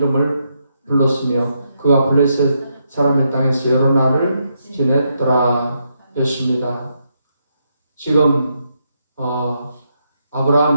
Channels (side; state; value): both; inverted; correlation -0.80